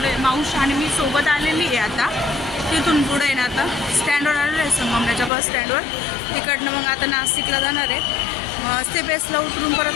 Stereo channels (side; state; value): right; drops out; at 5.3 s